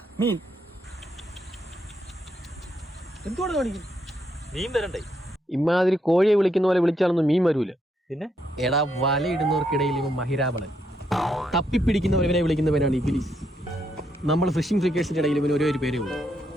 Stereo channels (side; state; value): both; normal; correlation 0.77